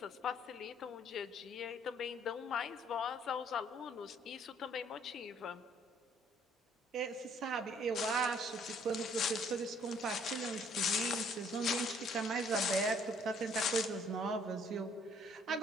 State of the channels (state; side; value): normal; both; correlation 0.62